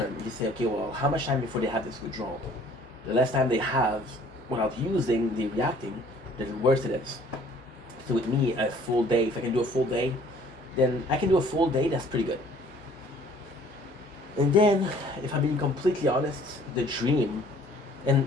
you say, okay, well, how much time before they have this withdrawal? The less time they have without using, the reacting, the worse it is. So with me, a full day, if I can do a full day, then I can do a full day, that's pretty good. And then, if I'm being completely honest, the dream,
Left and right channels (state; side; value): normal; both; correlation 0.55